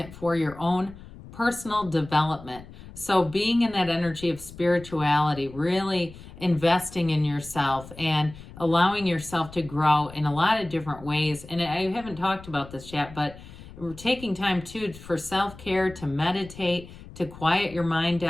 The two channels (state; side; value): noise; left; rumble, 17 dB below the sound